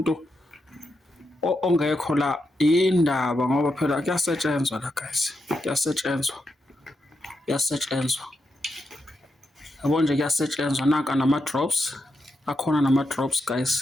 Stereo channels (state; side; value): normal; both; correlation 0.85